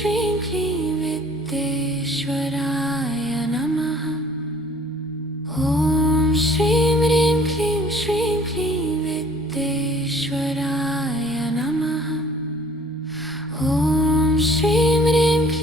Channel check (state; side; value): normal; both; correlation 0.55